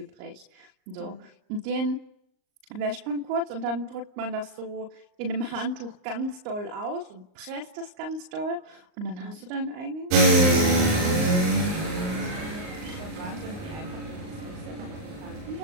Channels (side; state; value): left; late; 38 ms